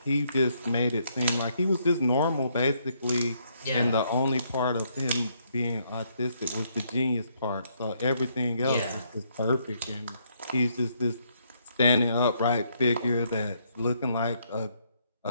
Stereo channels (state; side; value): inverted; both; correlation -0.73